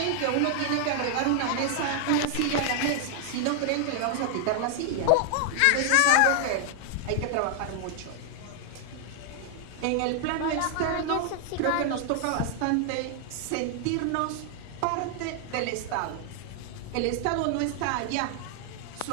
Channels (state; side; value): different; both; correlation 0.00